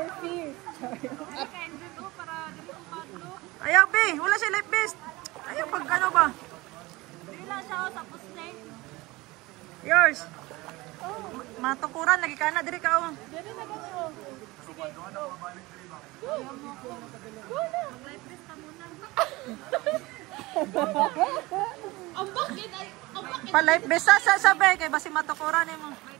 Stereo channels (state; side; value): quieter; left; 21.4 dB